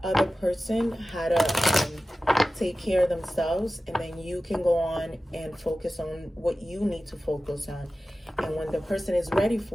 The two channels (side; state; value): both; normal; correlation 0.95